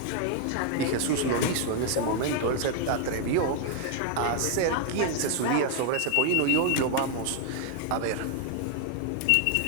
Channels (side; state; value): both; different; correlation 0.00